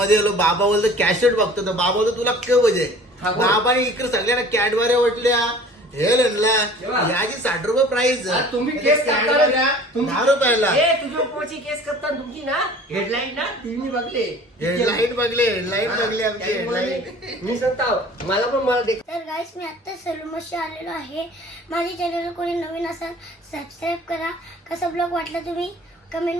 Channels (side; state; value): both; normal; correlation 0.47